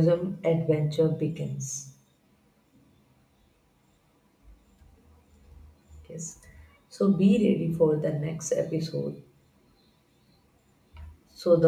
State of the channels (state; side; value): identical; both; correlation 1.00